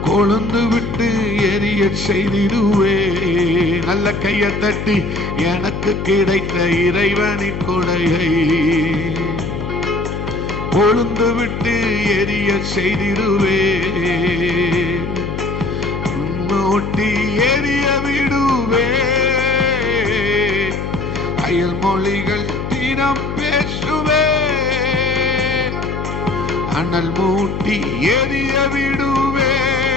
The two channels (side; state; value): left; noise; hum, 5 dB below the sound